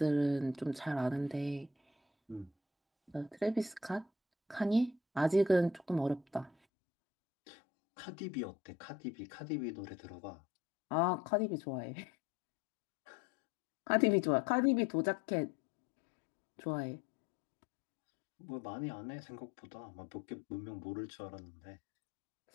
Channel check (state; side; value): drops out; right; at 6.5 s